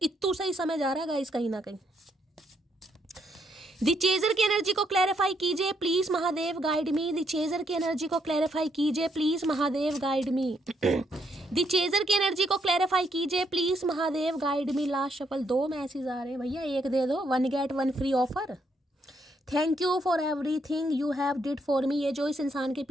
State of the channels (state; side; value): normal; both; correlation 0.74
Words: सही समय जा रहा है गाइस कहीं ना कहीं। दी चेजर की एनर्जी को क्लैरिफाई कीजिए please Mahadev guide me. The chaser की एनर्जी को क्लैरिफाई कीजिए please Mahadev guide me. The chaser की एनर्जी को क्लैरिफाई कीजिए please Mahadev guide me. Last shuffle 2 message आ रहे हैं भैया, एक दे दो, 1 get 1 free offer. Thank you for everything you have did for me. ये जो इस इंसान के